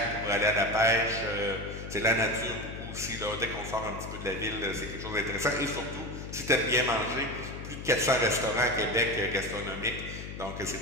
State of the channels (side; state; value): left; noise; hum, 9 dB below the sound